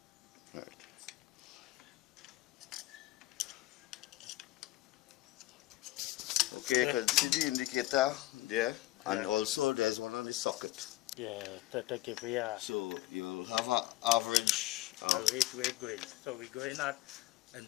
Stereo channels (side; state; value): right; quieter; 17.3 dB